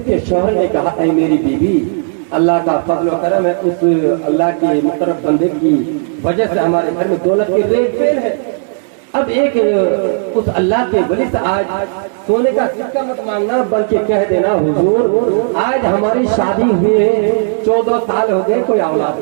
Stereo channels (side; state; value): left; silent; digital silence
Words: کے شوہر نے کہا اے میری بیوی اللہ کا فضل و کرم ہے، اس اللہ کے مقرب بندے کی وجہ سے ہمارے گھر میں دولت کی ریل پیل ہے. اب ایک اس اللہ کے ولی سے آج سونے کا سکہ مت مانگنا بلکہ کہہ دینا حضور آج ہماری شادی ہوئے 14 سال ہو گئے، کوئی اولاد